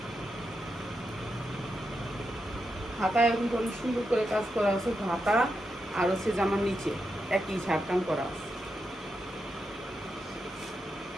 হাতায় এখন অনেক সুন্দর করে কাজ করা আছে, হাতা আর হচ্ছে জামার নিচে একই ঝাড়কান করা আছে।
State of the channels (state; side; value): normal; both; correlation 0.86